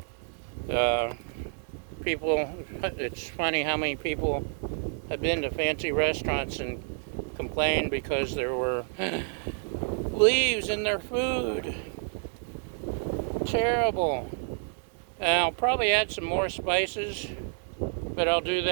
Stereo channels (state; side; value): silent; left; 59 dB below the other